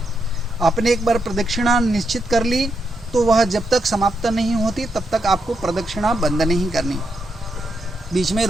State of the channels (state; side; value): normal; both; correlation 0.82